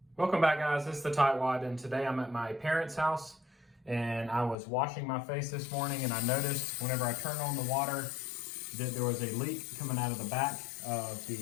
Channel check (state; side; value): drops out; right; at 4.5 s